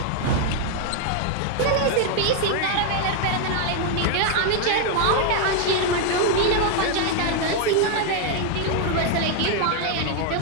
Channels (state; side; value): different; both; correlation 0.00